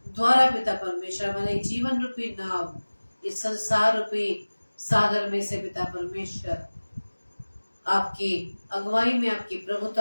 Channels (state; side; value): inverted; both; correlation -1.00